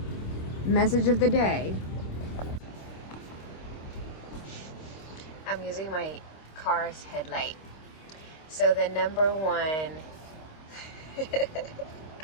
Message of the day. I'm using my car's headlight. So the number one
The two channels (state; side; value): late; right; 26 ms